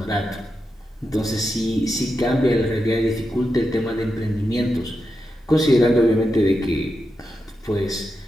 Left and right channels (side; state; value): both; normal; correlation 0.88